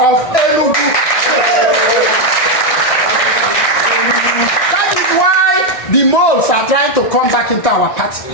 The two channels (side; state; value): right; late; 1.6 ms